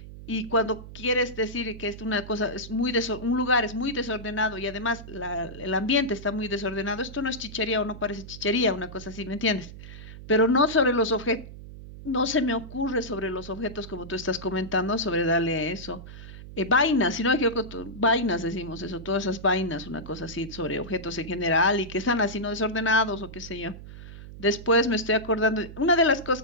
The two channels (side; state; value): right; noise; hum, 14 dB below the sound